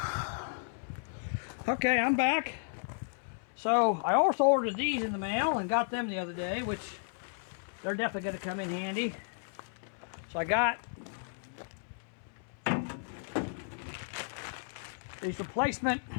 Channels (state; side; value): silent; right; 55 dB below the other